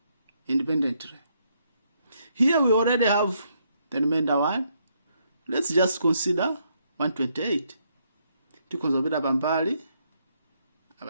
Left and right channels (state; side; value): inverted; both; correlation -0.74